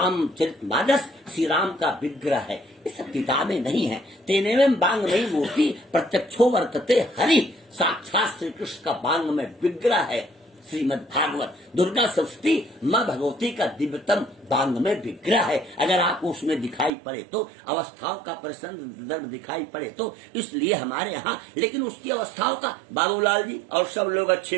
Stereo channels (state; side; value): drops out; left; at 16.9 s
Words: श्री राम का विग्रह है। ये सब किताबें नहीं है। तेनेवं वाङ्मयी मूर्ति प्रत्यक्षो वर्तते हरि, साक्षात श्री कृष्ण का वाङ्मय विग्रह है श्रीमद् भागवत। दुर्गा सप्तशती माँ भगवती का दिव्यतम वाङ्मय विग्रह है। अगर आपको उसमें दिखाई पड़े तो, अवस्थाओं का प्रसंग दिखाई पड़े तो, इसलिए हमारे यहाँ, लेकिन उसकी अवस्थाओं का बाबूलाल जी और सब लोग